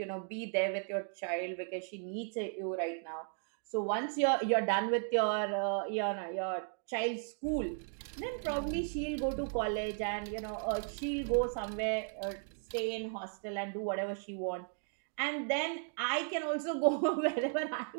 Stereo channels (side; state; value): left; silent; 54 dB below the other